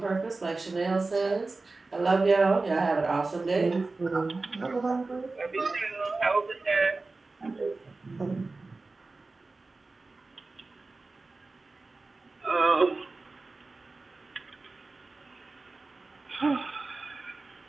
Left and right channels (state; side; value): quieter; left; 3.5 dB